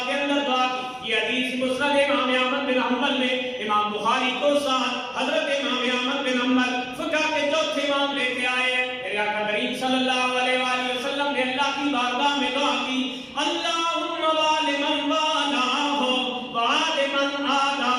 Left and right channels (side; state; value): both; identical; correlation 1.00